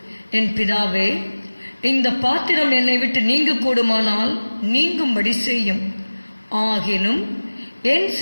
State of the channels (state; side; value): inverted; both; correlation -1.00